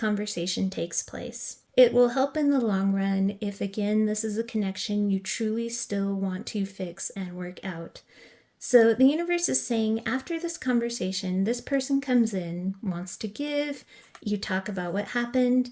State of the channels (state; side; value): identical; both; correlation 1.00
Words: takes place. It will help in the long run if, again, this is a connection you truly still want to fix and work out. So the universe is saying after this conversation, this person comes in, wants to give, you talk about what happened.